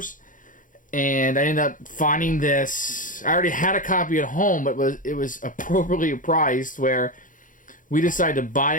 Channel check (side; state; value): right; late; 0.38 ms